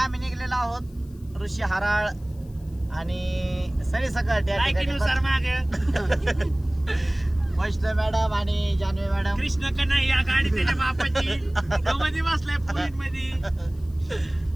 निघलेलो आहोत ऋषी हराळ आणि सरी सकट. या ठिकाणी वैष्णव मॅडम आणि जानवी मॅडम, कृष्ण कन्हैया गाडी त्याच्या बापाची मध्ये बसलाय पुरीत मध्ये,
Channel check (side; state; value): left; noise; hiss, 29 dB below the sound